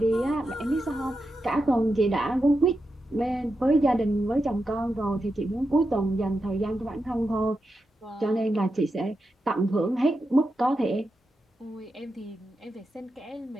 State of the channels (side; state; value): both; normal; correlation 0.88